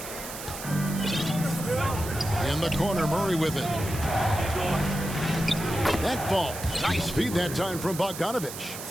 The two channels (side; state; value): right; noise; hiss, 10 dB below the sound